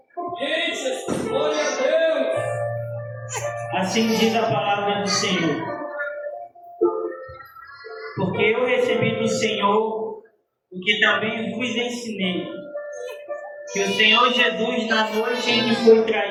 Glória a Deus! Assim diz a palavra do Senhor. Porque eu recebi do Senhor o que também vos ensinei, que o Senhor Jesus, na noite em que foi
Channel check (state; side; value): identical; both; correlation 1.00